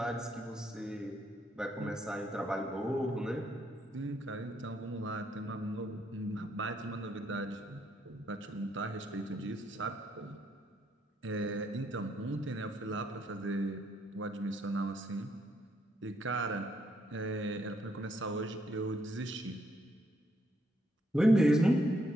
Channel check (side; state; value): both; normal; correlation 0.74